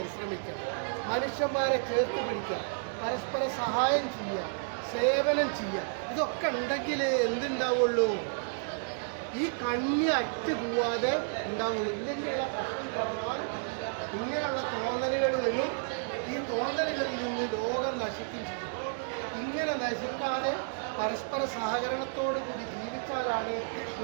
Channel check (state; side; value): silent; left; 57 dB below the other